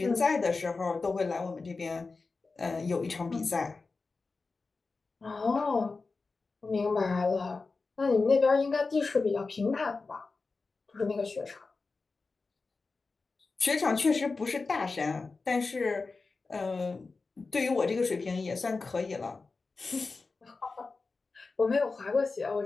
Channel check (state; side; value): quieter; right; 4.0 dB